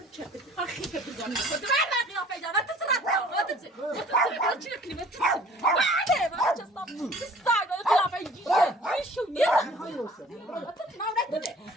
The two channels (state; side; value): normal; both; correlation 0.51